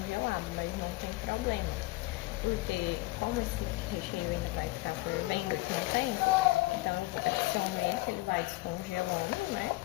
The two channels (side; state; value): right; quieter; 20.9 dB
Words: mas não tem problema. Porque, como esse recheio ainda vai ficar fervendo aqui no tempo, então eu adiciono ele, que ele vai descongelando, né?